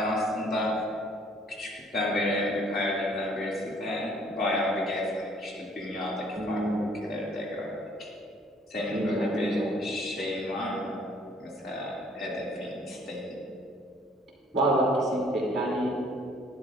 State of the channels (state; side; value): normal; both; correlation 0.59